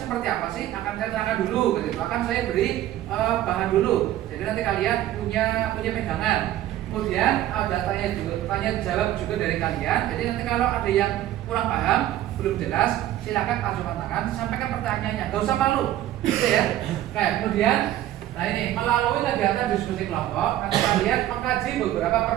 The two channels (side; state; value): left; quieter; 13.4 dB